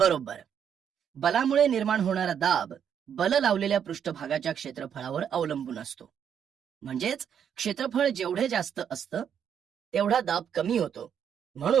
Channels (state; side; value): quieter; left; 8.3 dB